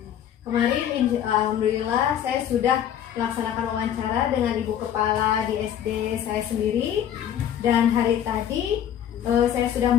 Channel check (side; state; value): right; quieter; 10.0 dB